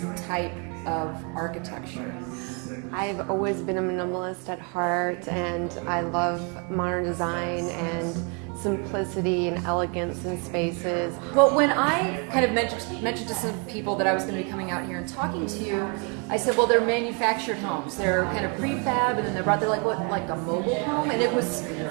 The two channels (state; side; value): quieter; left; 35.2 dB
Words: type of architecture? I've always been a minimalist at heart, and I love modern design and simplicity and elegance in spaces. Well, when I kind of mentioned to some people that I was going to be coming out here and talking to you, I said, well, they're manufactured homes. They're kind of prefab, and then they're like a mobile home, and it was